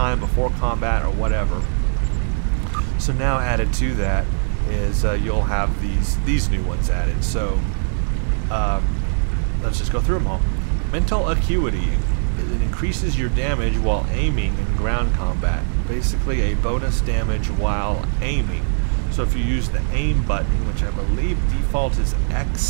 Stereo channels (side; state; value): left; silent; digital silence